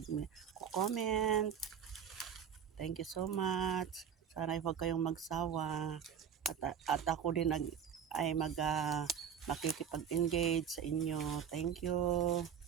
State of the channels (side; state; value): left; quieter; 8.1 dB